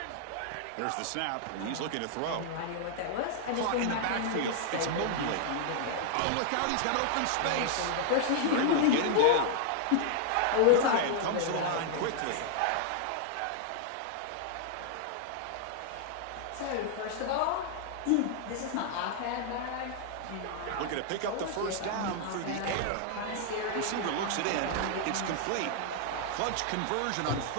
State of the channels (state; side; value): different; both; correlation -0.01